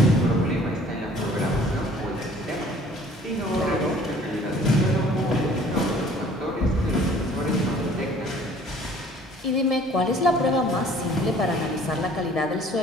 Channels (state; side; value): normal; both; correlation 0.53